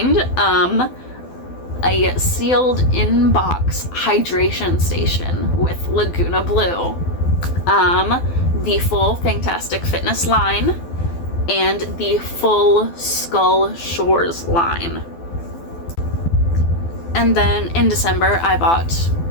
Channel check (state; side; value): late; right; 12 ms